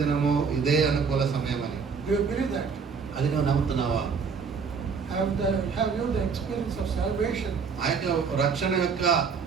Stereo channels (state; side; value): quieter; left; 5.7 dB